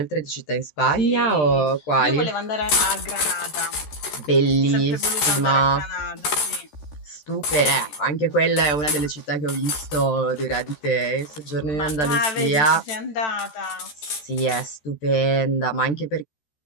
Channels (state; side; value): late; right; 13 ms